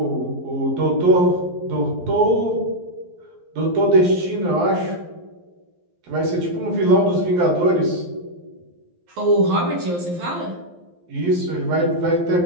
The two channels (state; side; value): late; left; 11 ms